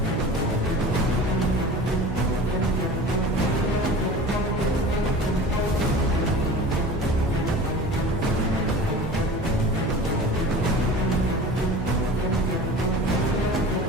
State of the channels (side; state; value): both; normal; correlation 0.38